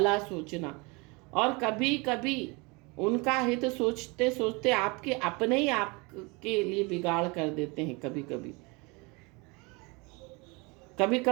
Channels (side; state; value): left; quieter; 27.6 dB